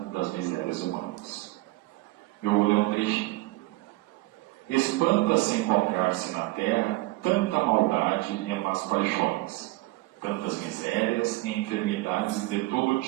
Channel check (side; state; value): left; quieter; 20.1 dB